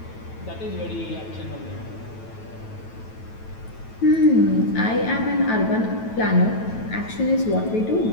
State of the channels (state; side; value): late; right; 9.1 ms